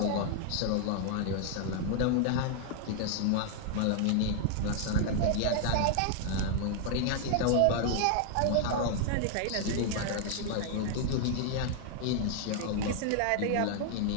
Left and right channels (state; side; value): different; both; correlation 0.00